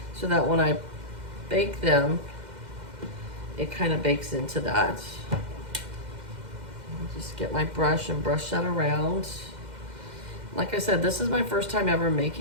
so that when I bake them, it kind of bakes into that. I'll just get my brush and brush that around. Like I said, this is my first time ever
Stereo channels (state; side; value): late; left; 2.1 ms